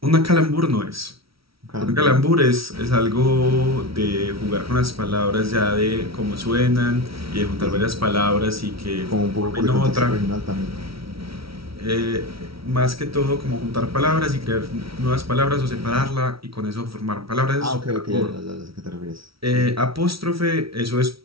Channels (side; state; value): left; late; 0.75 ms